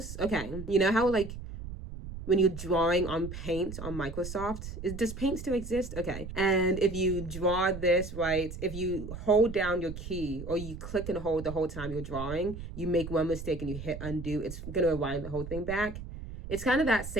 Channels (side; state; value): right; noise; rumble, 10 dB below the sound